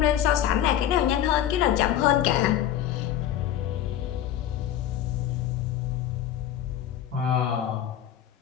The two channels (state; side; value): quieter; right; 11.0 dB